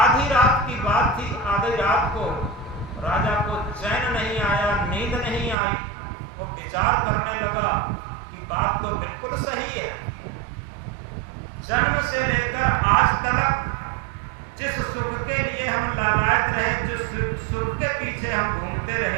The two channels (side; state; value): left; drops out; at 5.6 s